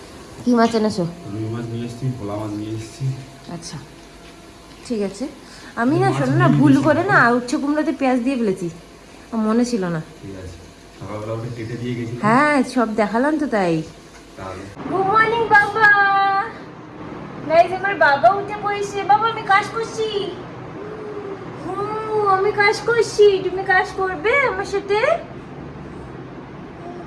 কি মাছ এনেছো? রুই মাছ নিয়ে এসেছি, ভোলা মাছ নিয়ে এসেছি। আচ্ছা ঠিক আছে। আমি না শোনো না, ভুল করে না উচ্ছে কুমড়োতে পেঁয়াজ দিয়ে ফেলেছি, আমার মনে ছিল না। ঠিক আছে, সকালবেলা ওটা কেটে দিয়ে গেছিলাম। হ্যাঁ সব দেখালাম তো তাই। তাহলে গুড মর্নিং বাবা। গাইস আমার বাবা উঠে পড়েছে। বাবা আমি কাজ করছি। আমি কাজ করছি, তুমি কাজ করবে আমার সাথে?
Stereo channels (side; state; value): both; identical; correlation 1.00